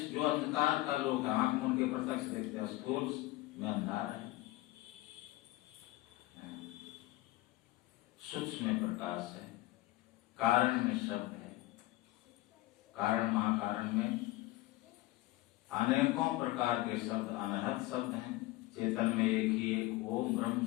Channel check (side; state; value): right; quieter; 18.5 dB